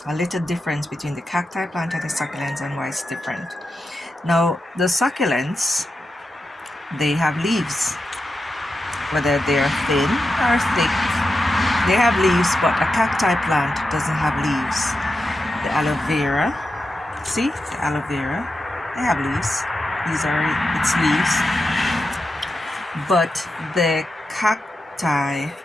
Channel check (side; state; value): both; normal; correlation 0.89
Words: little difference between the cacti plant and the succulents and why it's different. Now, the succulents, they have leaves, whether they're thin or thick. They have leaves, but a cacti plant doesn't have leaves. The aloe vera. See, the aloe vera, they have leaves. These are its leaves. But the cacti